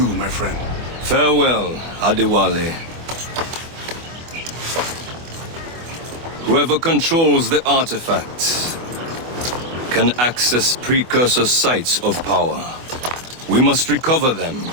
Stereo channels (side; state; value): left; late; 24 ms